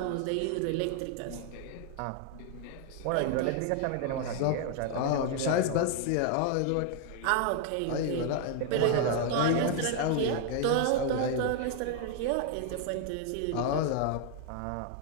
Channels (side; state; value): both; different; correlation 0.00